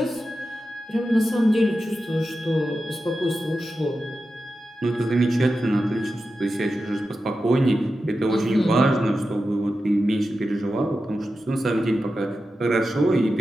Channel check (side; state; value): both; normal; correlation 0.91